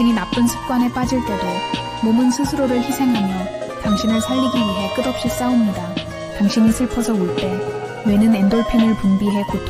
나쁜 습관에 빠질 때도 몸은 스스로를 희생하며 당신을 살리기 위해 끝없이 싸웁니다. 당신이 슬퍼서 울 때 뇌는 엔돌핀을 분비해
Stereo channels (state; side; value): identical; both; correlation 1.00